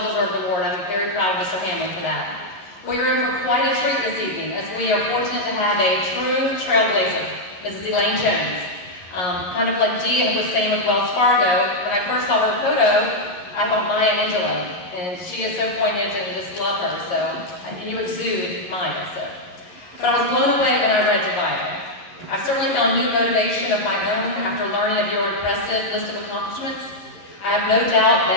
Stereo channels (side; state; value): right; late; 11 ms